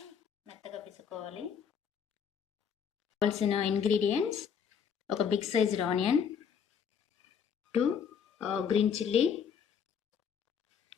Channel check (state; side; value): quieter; right; 7.3 dB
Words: మెత్తగా పిసుకోవాలి. కావాల్సిన ఇంగ్రీడియంట్స్: ఒక big sized onion, 2 green chilli,